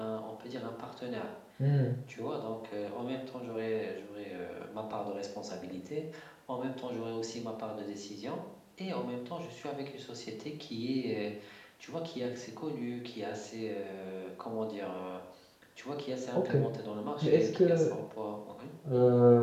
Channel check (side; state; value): both; identical; correlation 1.00